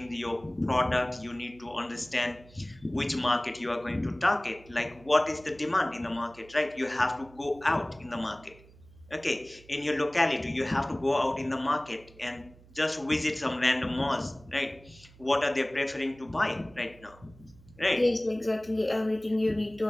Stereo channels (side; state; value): right; noise; hum, 24 dB below the sound